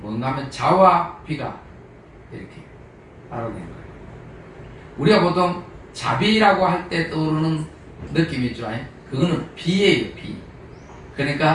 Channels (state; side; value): identical; both; correlation 1.00